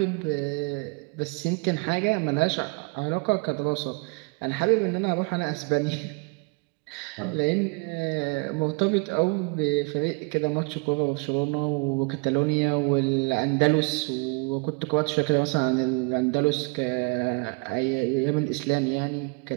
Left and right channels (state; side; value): quieter; left; 31.4 dB